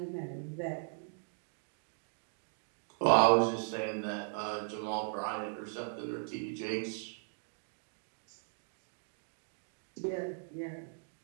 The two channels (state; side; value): silent; left; digital silence